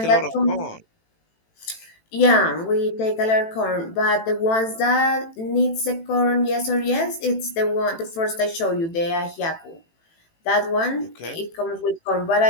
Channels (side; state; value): right; late; 18 ms